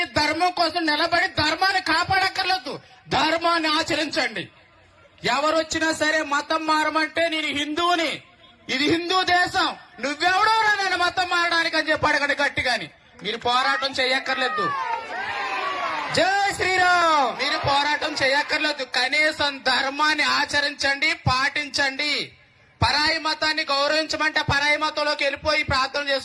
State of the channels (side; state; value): both; identical; correlation 1.00